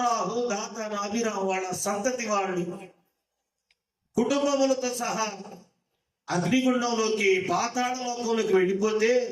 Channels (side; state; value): both; identical; correlation 1.00